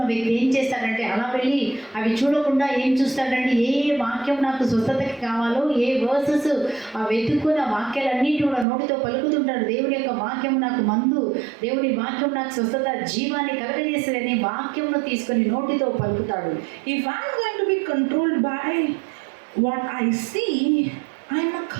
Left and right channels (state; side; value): drops out; left; at 8.7 s